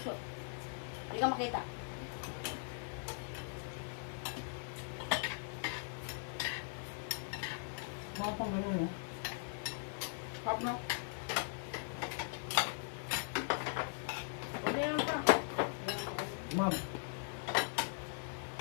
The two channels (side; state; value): right; silent; 51 dB below the other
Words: Hindi ka makita. Mga pang gano'n, no? Pop no? Pwede yan pa. Ma'am,